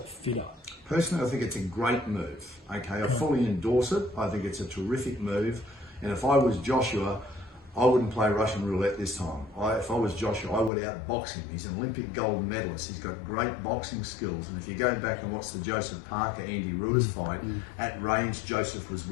fitter? Personally, I think it's a great move. Okay, I fully endorse it. I think it's a terrific move. And if I was Joshua, I wouldn't play Russian roulette this time. If I was Joshua, I would outbox him. He's an Olympic gold medalist. He's got great boxing skills. And if you go back and watch the Joseph Parker-Andy Ruiz fight, at range, Joseph was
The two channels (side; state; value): right; drops out; at 10.7 s